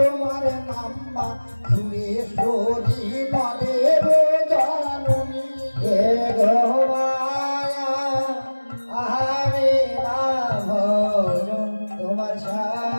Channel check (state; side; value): inverted; both; correlation -1.00